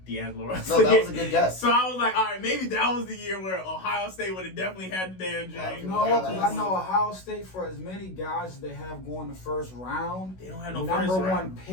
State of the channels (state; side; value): late; right; 16 ms